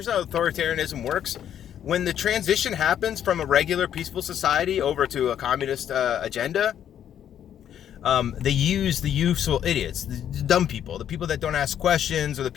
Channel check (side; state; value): right; quieter; 9.9 dB